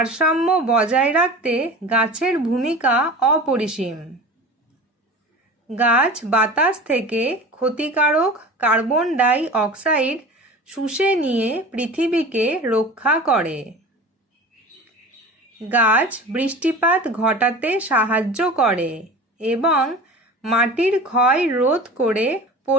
বজায় রাখতে গাছের ভূমিকা অপরিসীম। গাছ বাতাস থেকে ক্ষতিকারক কার্বন ডাই অক্সাইড শুষে নিয়ে পৃথিবীকে রক্ষা করে। গাছ বৃষ্টিপাত ঘটাতে সাহায্য করে এবং মাটির ক্ষয় রোধ করে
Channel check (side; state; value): both; normal; correlation 0.36